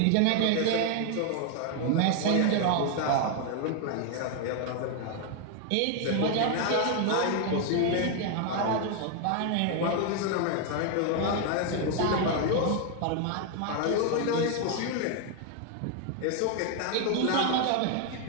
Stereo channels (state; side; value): different; both; correlation 0.00